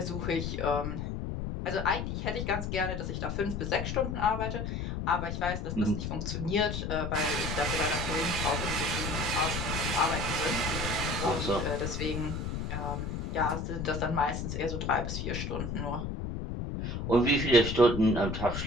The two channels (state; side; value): noise; left; rumble, 3 dB below the sound